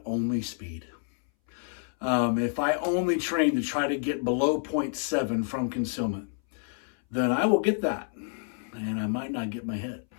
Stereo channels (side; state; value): right; silent; 59 dB below the other